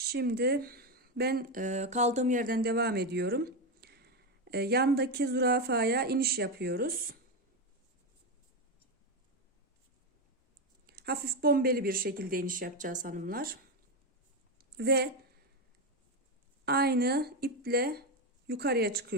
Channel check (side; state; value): both; normal; correlation 0.10